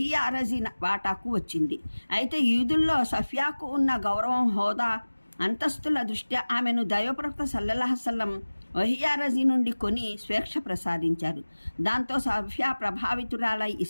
రజీ వాటాకు వచ్చింది. అయితే యూదుల్లో సఫియాకు ఉన్న గౌరవం, హోదా, అంతస్తుల దృష్ట్యా ఆమెను దైవప్రవక్త సల్లల్లాహు అలైహి వసల్లం వహియా రజీ నుండి కొని స్వేచ్ఛ ప్రసాదించారు. దాంతో సఫియా ప్రభావితురాలై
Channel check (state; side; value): inverted; both; correlation -1.00